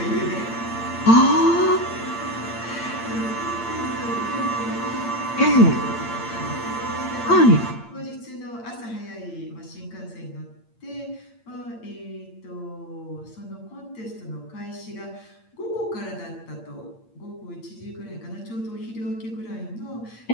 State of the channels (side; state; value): right; late; 8.7 ms